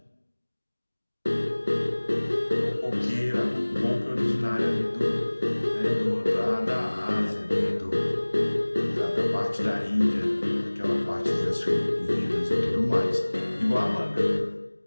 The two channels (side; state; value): both; inverted; correlation -1.00